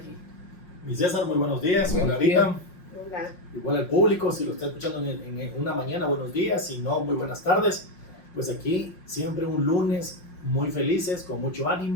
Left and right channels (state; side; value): late; right; 5.6 ms